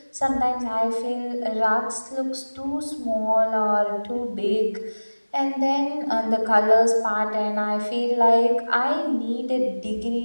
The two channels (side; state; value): both; inverted; correlation -1.00